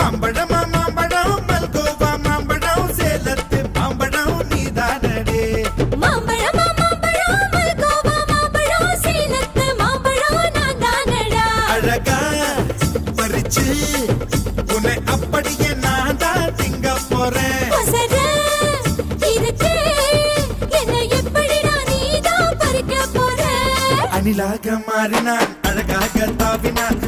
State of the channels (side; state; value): both; identical; correlation 1.00